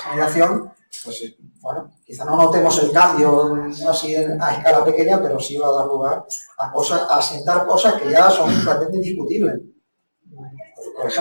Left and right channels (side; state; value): both; inverted; correlation -1.00